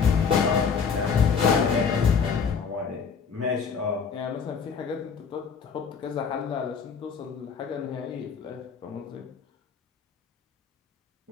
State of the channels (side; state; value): right; quieter; 6.1 dB